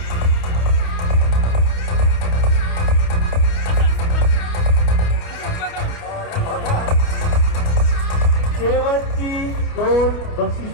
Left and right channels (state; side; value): late; right; 29 ms